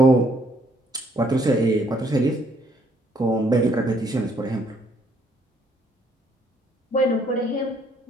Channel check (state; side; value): normal; both; correlation 0.67